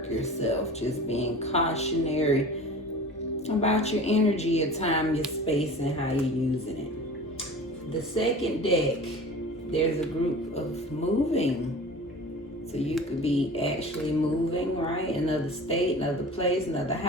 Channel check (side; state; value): both; normal; correlation 0.38